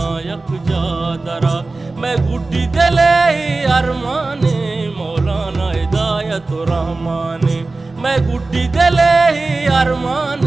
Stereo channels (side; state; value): left; quieter; 3.4 dB